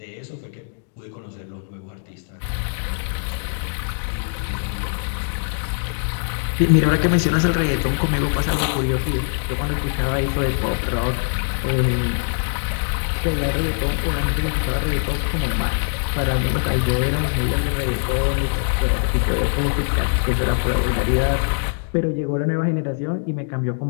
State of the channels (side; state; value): right; silent; 64 dB below the other